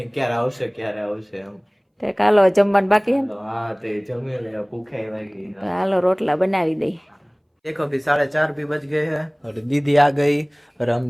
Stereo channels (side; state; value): both; identical; correlation 1.00